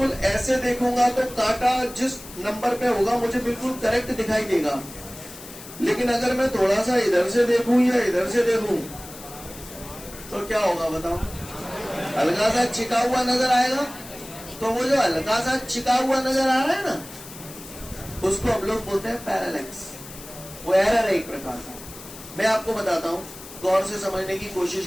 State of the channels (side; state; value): left; noise; hiss, 15 dB below the sound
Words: ऐसे देखूंगा तो कांटा जिस नंबर पे होगा मुझे बिल्कुल करेक्ट दिखाई देगा, लेकिन अगर मैं थोड़ा सा इधर से देखूं या इधर से देखूं तो क्या होगा बताओ, हल्का सा चिका हुआ नजर आएगा। तो वो जो हल्का सा चिका हुआ नजर आ रहा है ना, उसको हम लोग बोलते हैं पैरेलैक्स। वो एरर है एक प्रकार का। मैं आपको बताता हूं, गौर से समझने की कोशिश